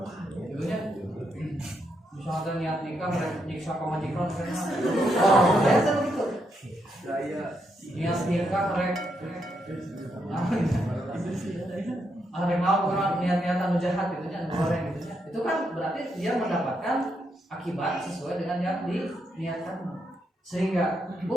Jadinya misalnya niat nikah nyiksa ke majikan karena biasa begitu. Niat nikah rek ada yang mau orang niat-niatan jahat gitu nya goreng gitu nya. Itu kan berarti dia mendapatkan akibat sesuai dengan yang diniatkan. Sehingga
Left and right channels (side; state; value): both; normal; correlation 0.80